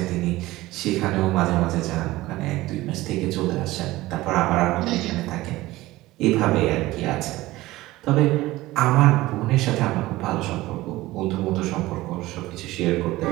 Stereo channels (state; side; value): quieter; left; 18.1 dB